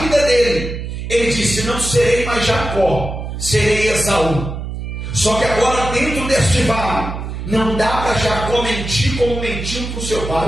dele, ele disse: não serei mais Jacó, serei Esaú. Só que agora, dentro deste vale, não dá para Jacó mentir como mentiu para o seu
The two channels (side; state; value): right; noise; hum, 6 dB below the sound